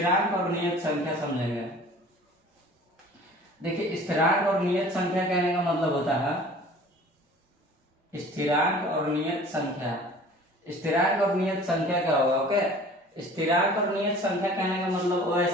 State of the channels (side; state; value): both; normal; correlation 0.46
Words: और नियत संख्या समझेंगे। देखिए स्थिरांक और नियत संख्या कहने का मतलब होता है, स्थिरांक और नियत संख्या, स्थिरांक और नियत संख्या क्या होगा, ओके। स्थिरांक और नियत संख्या कहने का मतलब वो